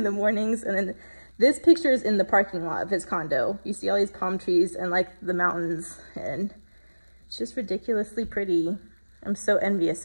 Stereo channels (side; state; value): both; inverted; correlation -1.00